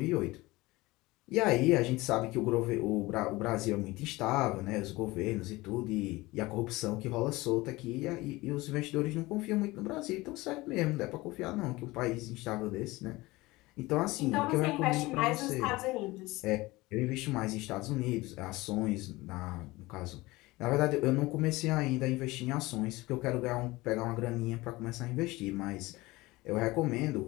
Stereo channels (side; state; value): right; quieter; 20.7 dB